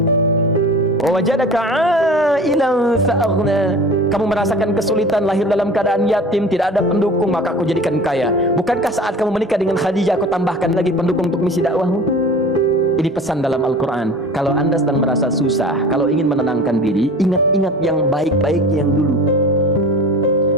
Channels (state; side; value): normal; both; correlation 0.39